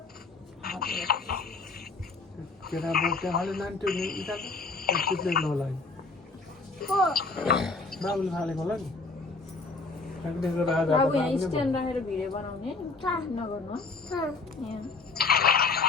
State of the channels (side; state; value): right; quieter; 3.9 dB